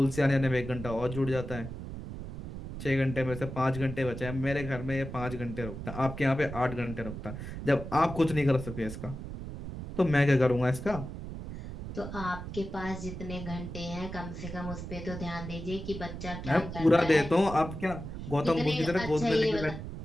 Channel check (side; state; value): right; noise; rumble, 9 dB below the sound